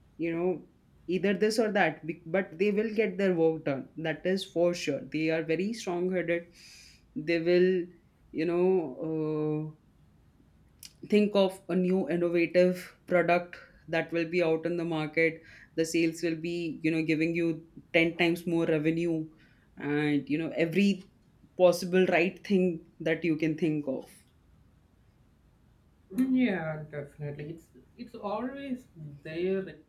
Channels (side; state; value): both; identical; correlation 1.00